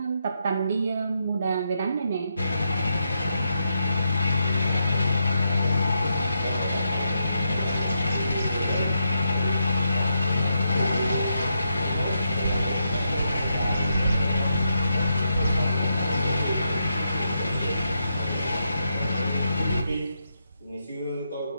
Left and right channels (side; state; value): both; inverted; correlation -0.82